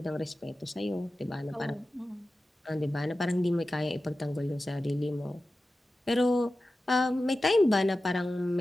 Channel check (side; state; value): both; normal; correlation 0.94